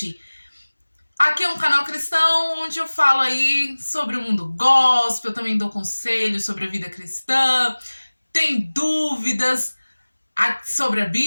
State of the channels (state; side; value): inverted; both; correlation -1.00